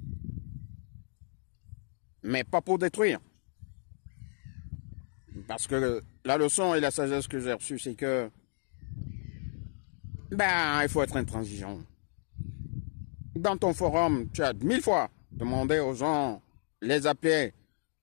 Mais pas pour détruire. Parce que la leçon et la sagesse que j'ai reçue, c'est que il faut être intransigeant. Dans ton forum, tu as 1000 fois demandé aux gens, les appeler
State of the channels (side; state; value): right; silent; digital silence